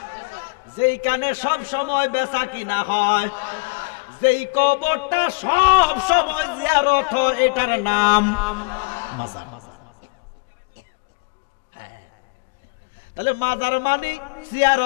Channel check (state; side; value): quieter; right; 31.0 dB